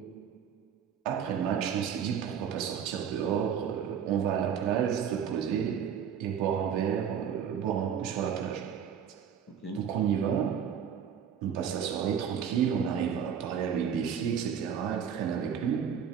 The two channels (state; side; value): quieter; left; 7.9 dB